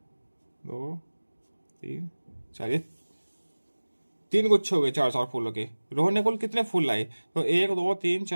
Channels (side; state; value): both; inverted; correlation -1.00